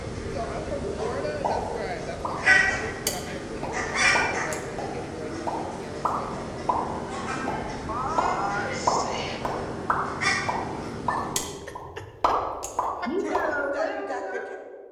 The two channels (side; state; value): both; identical; correlation 1.00